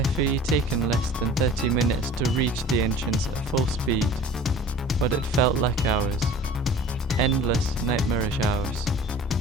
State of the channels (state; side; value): normal; both; correlation 0.43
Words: FE taken less than 30 minutes to reach the entrance at full speed, but it felt like hours. Endless, nightmarish hours.